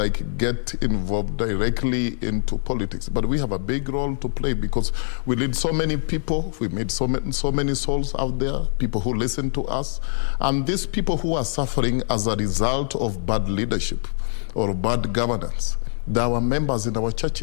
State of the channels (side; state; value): right; silent; 63 dB below the other